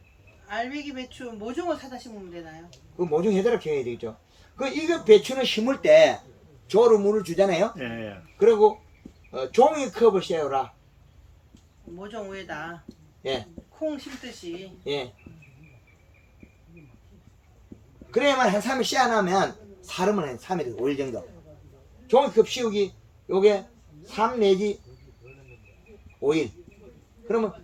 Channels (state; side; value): identical; both; correlation 1.00